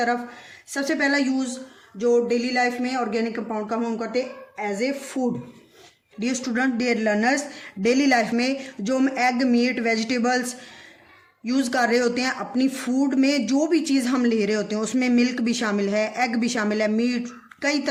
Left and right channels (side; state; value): both; identical; correlation 1.00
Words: सबसे पहला यूज़ जो डेली लाइफ में ऑर्गेनिक कंपाउंड का हम करते हैं as a food. Dear student, dear learners, daily life में जो हम एग, मीट, वेजिटेबल्स यूज़ कर रहे होते हैं अपनी फूड में, जो भी चीज़ हम ले रहे होते हैं उसमें मिल्क भी शामिल है, एग भी शामिल है, मीट, कई